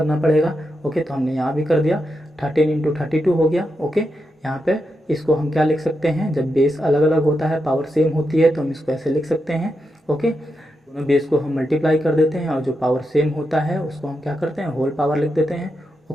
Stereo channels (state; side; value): normal; both; correlation 0.86